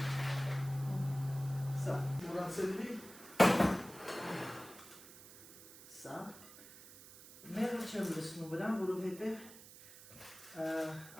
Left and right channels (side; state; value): right; noise; hiss, 18 dB below the sound